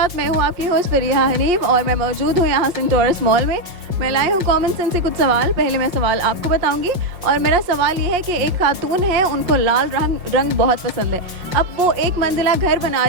मैं हूँ आपकी होस्ट फरीहा हनीफ और मैं मौजूद हूँ यहाँ सेंटोरस मॉल में। मैं लाई हूँ कॉमन सेंस से कुछ सवाल। पहले मैं सवाल आपको बताऊंगी और मेरा सवाल ये है कि एक खातून है, उनको लाल रंग बहुत पसंद है। अब वो एक मंजिला घर बना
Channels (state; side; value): late; left; 5.5 ms